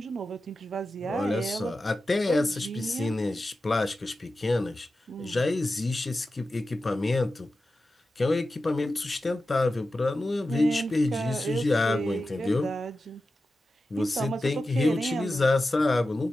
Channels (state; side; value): normal; both; correlation 0.92